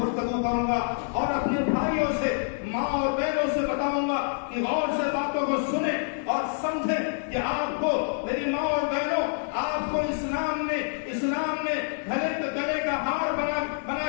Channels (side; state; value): right; silent; 60 dB below the other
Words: کروں گا، اور اپنے بھائیوں سے، ماں اور بہنوں سے بتاؤں گا کہ غور سے باتوں کو سنیں اور سمجھیں کہ آپ کو، میری ماں اور بہنوں، آپ کو اسلام نے گلے کا ہار بنا